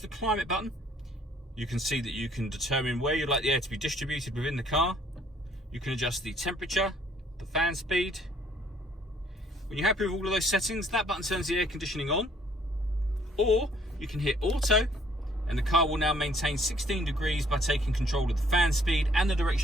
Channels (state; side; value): normal; both; correlation 0.62